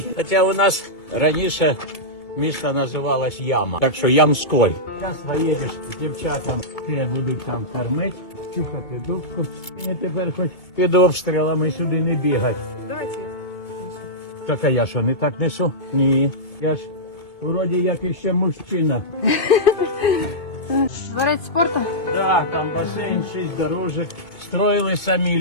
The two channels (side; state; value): right; late; 2.2 ms